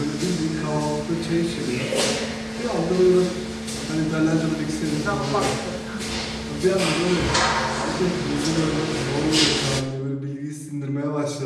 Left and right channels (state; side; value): identical; both; correlation 1.00